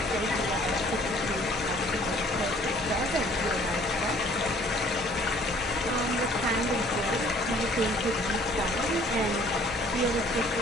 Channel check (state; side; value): normal; both; correlation 0.56